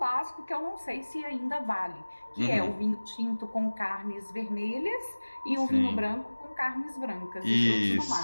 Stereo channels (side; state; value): both; inverted; correlation -1.00